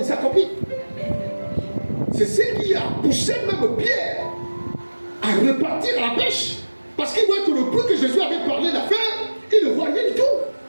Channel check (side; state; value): both; inverted; correlation -1.00